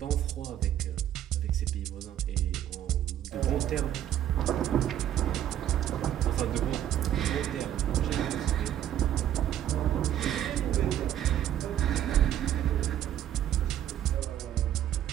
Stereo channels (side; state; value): left; quieter; 11.2 dB